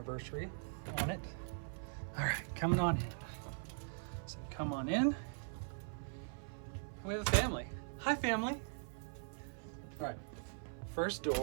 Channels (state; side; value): silent; left; 50 dB below the other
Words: on it. All right, coming on in. So come on in. We have a family. Hi, family. All right, first